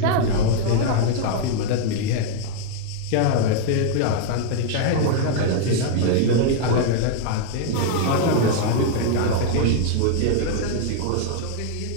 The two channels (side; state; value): both; different; correlation -0.01